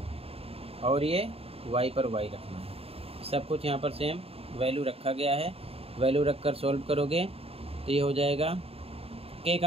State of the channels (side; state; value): left; late; 0.28 ms